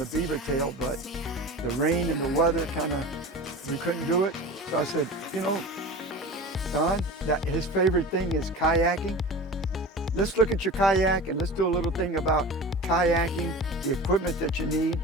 beaver tail, but the rain and the weather we couldn't do it. So I said, Don, that his favorite thing is kayaking. Let's look at your kayak and let's do a little thing about kayaking, the equipment that you need,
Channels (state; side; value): normal; both; correlation 0.34